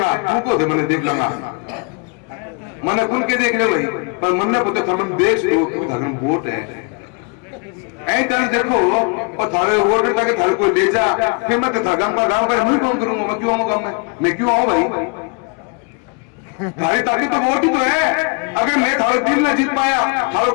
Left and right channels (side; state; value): right; quieter; 34.8 dB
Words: तू को मैंने देख लूंगा, मैंने कुल के देख ले भाई, पर मन ने पता था देश लो क्यों वोट है ऐसे देखो, और थारे वोट ताकि थारे को ले जा, फिर मैं गांव का नहीं काम करूंगा, मैं क्यों आऊँ गाँव में, मैं क्यों आऊँ भाई? थारी ताकत तो वोट ही तो है। अगर मैं थारे दिल न जीत पाया, थारो